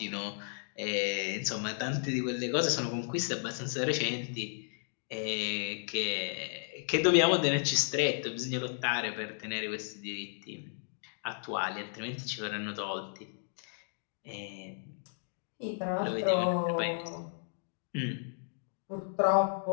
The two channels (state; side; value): silent; right; digital silence